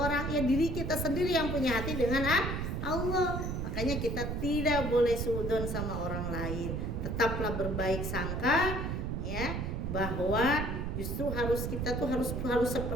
Ya diri kita sendiri yang punya hati dengan Allah. Makanya kita tidak boleh suudzon sama orang lain. Tetaplah berbaik sangka, ya, bahwa justru kita harus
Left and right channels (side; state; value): right; noise; rumble, 2 dB below the sound